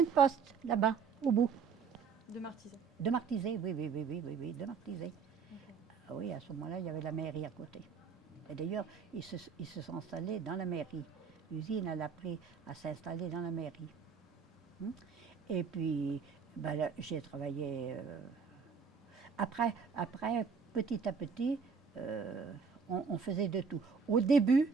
poste, là-bas, au bout. De Martizet. De Martizet, oui, de Martizet. Okay. Ah oui, à ce moment-là, il y avait la mairie à côté. Et d'ailleurs, ils se sont installés dans la mairie. L'usine, elle a pris à s'installer dans la mairie. Et puis, ben, j'ai travaillé... Après, petit à petit, on faisait de tout. Au début,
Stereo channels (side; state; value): left; quieter; 5.8 dB